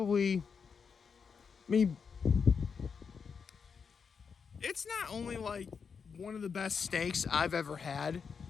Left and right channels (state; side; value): quieter; right; 6.0 dB